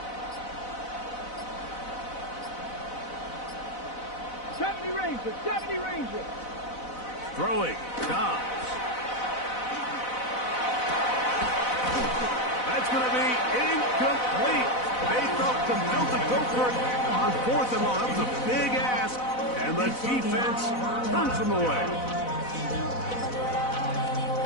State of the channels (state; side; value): late; right; 4.0 ms